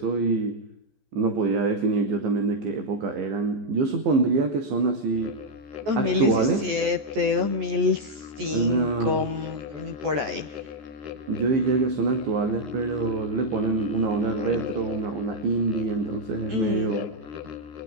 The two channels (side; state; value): left; late; 14 ms